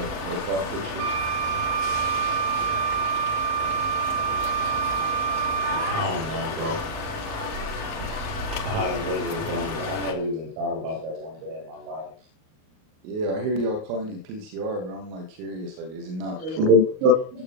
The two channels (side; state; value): left; late; 38 ms